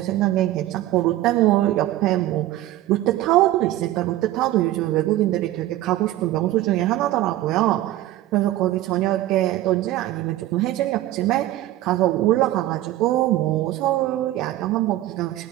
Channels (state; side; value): quieter; left; 15.1 dB